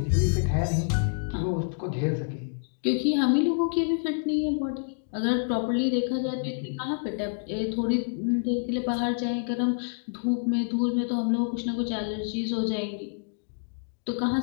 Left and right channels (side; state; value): right; silent; digital silence